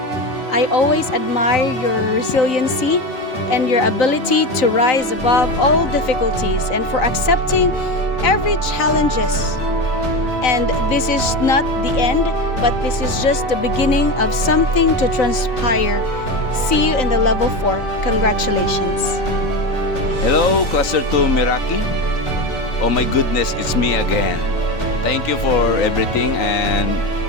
I always admire your resiliency and your ability to rise above all difficulties and for accepting every challenges. And this is not the end, but this is just the beginning of something to transpire. See you in the level 4. Congratulations. Hello, Cluster 2 Meraki. Oh my goodness, it's me again. Thank you for everything and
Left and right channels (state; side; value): late; right; 3.9 ms